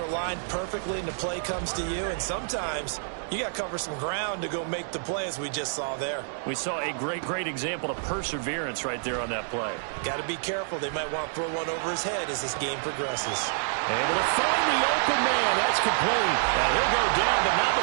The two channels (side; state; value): left; silent; digital silence